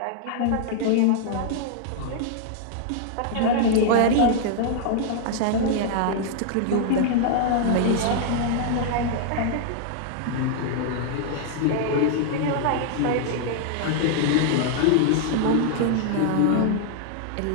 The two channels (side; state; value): both; different; correlation -0.01